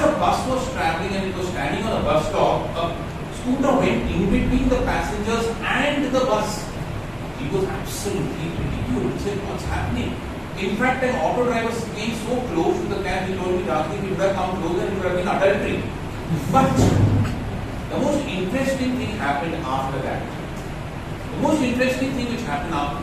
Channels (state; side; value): identical; both; correlation 1.00